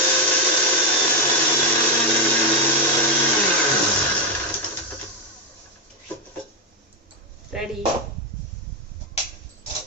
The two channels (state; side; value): normal; both; correlation 0.05